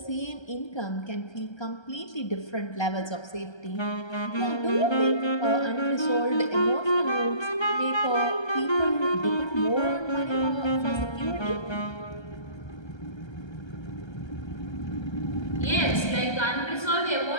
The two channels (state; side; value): late; right; 1.3 ms